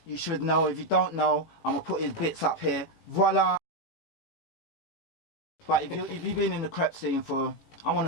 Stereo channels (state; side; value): late; right; 18 ms